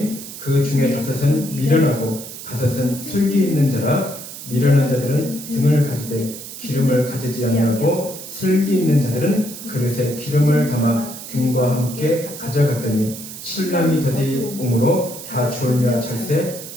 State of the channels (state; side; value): noise; right; hiss, 12 dB below the sound